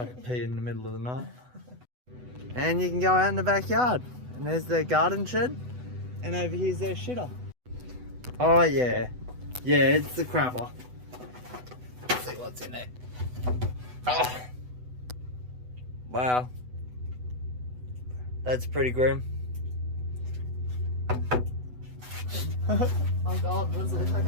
a pee in the middle of the night. And you can go out in the backyard. And there's their garden shed. And over here's their shitter. Oh yeah. Yeah, it's the crapper. Let's see what's in there. Oh. Wow. That's pretty grim. Oh god, what does it look like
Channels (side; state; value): left; late; 8.0 ms